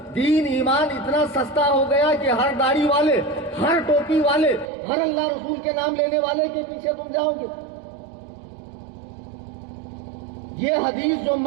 دین ایمان اتنا سستا ہو گیا کہ ہر داڑھی والے، ہر ٹوپی والے، ہر اللہ رسول کے نام لینے والے کے پیچھے تم جاؤ گے۔ یہ حدیث جو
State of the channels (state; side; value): drops out; left; at 4.7 s